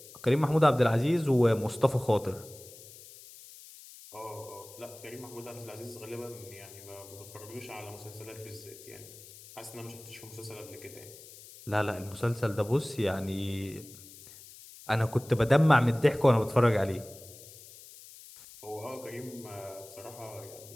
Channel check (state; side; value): noise; left; hiss, 18 dB below the sound